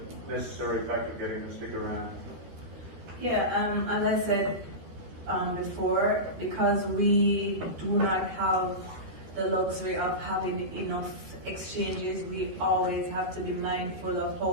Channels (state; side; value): late; left; 13 ms